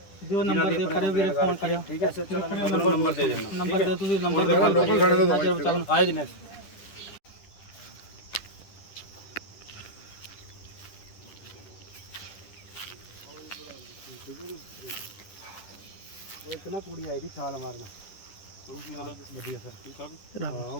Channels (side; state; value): right; late; 10 ms